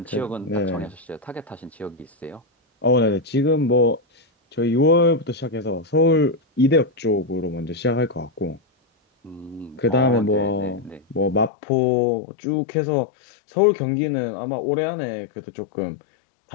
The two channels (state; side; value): drops out; right; at 11.5 s